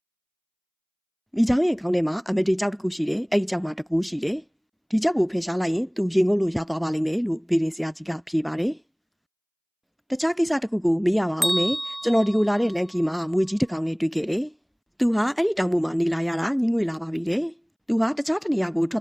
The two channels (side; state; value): both; identical; correlation 1.00